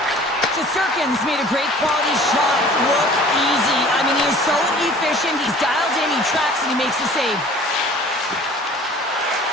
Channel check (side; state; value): both; normal; correlation 0.48